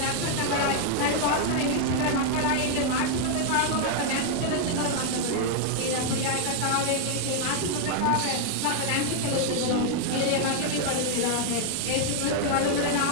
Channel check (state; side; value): different; both; correlation 0.00